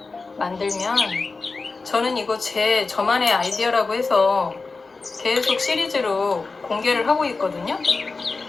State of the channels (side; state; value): right; quieter; 4.0 dB